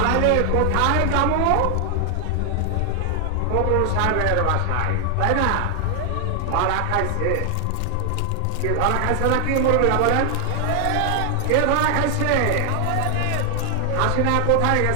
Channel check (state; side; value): different; both; correlation 0.00